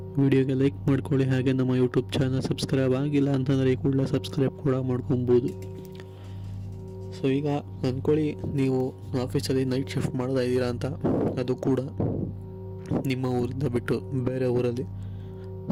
ವಿಡಿಯೋಗೆ ಲೈಕ್ ಮಾಡ್ಕೊಳ್ಳಿ. ಹಾಗೆ ನಮ್ಮ ಯೂಟ್ಯೂಬ್ ಚಾನಲ್ ಸಬ್ಸ್ಕ್ರೈಬ್ ಆಗಿಲ್ಲ ಅಂತಂದರೆ ಈ ಕೂಡಲೇ ಸಬ್ಸ್ಕ್ರೈಬ್ ಕೂಡ ಮಾಡ್ಕೊಬೋದು. ಸೊ ಈಗ ಅಂದ್ಕೊಳ್ಳಿ, ನೀವು ಆಫೀಸಲ್ಲಿ ನೈಟ್ ಶಿಫ್ಟ್ ಮಾಡ್ತಾ ಇದ್ದೀರಾ ಅಂತ, ಅದು ಕೂಡ ನಿಮ್ಮ ಊರಿಂದ ಬಿಟ್ಟು ಬೇರೆ ಊರಲ್ಲಿ.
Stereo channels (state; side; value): identical; both; correlation 1.00